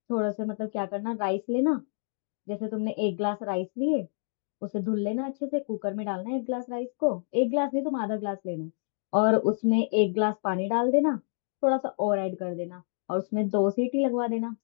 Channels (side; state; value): right; silent; digital silence